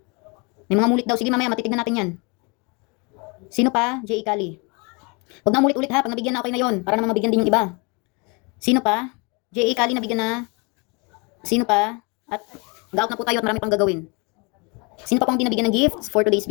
May mga mulit daw. Sige mamaya, matitignan natin yan. Sino pa? J.A. Kali. Huwag na ulit-ulit ha, pag nabigyan na okay na yon, para naman mabigyan din yung iba. Sino pa? J.A. Kali nabigyan na. Sino pa? At mag-out na po tayo at marami pang gagawin. Sino pa pang dinabigyan ng gifts for today's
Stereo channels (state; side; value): quieter; right; 30.6 dB